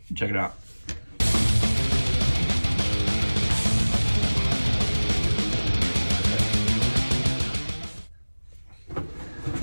Check it out.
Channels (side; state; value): both; inverted; correlation -1.00